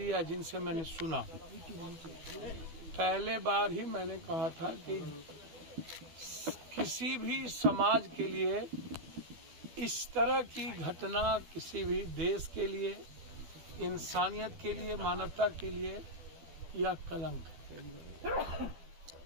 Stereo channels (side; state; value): left; late; 12 ms